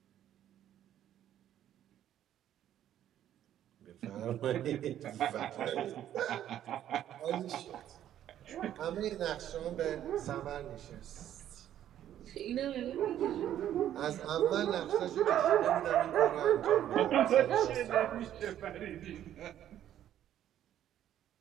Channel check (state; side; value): quieter; left; 11.3 dB